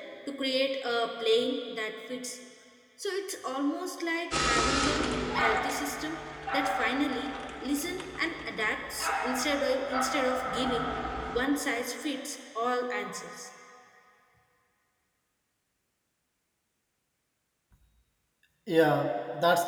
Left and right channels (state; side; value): identical; both; correlation 1.00